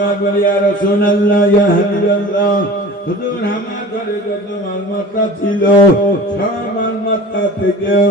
বলে, ইয়া রাসূলুল্লাহ, ইয়া হাবিবাল্লাহ, হুজুর আমার ঘরে যত মালমাত্রা ছিল সব মালমাত্রা থেকে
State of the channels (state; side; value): normal; both; correlation 0.40